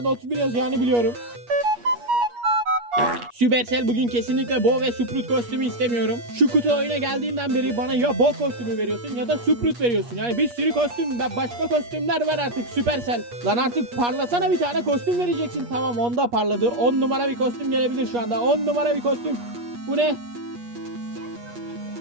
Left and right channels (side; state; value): left; late; 8.4 ms